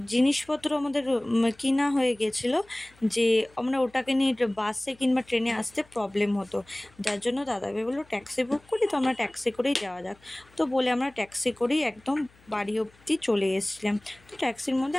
জিনিসপত্র আমাদের কিনা হয়ে গেছিলো যে আমরা ওটাকে নিয়ে বাসে কিংবা ট্রেনে আসতে প্রবলেম হতো। যার জন্য দাদাভাই বললো ট্যাক্সি বুক করি, তো আমরা ট্যাক্সি করেই যাওয়া যাক। তো বলে আমরা ট্যাক্সি করেই একদম বাড়ি অবধি চলে এসেছিলাম। তো ট্যাক্সির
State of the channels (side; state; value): left; noise; hum, 29 dB below the sound